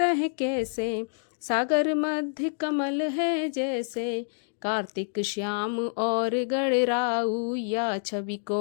कैसे, सागर मध्य कमल है जैसे। कार्तिक श्याम और गणराऊ, या छवि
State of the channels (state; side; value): silent; right; digital silence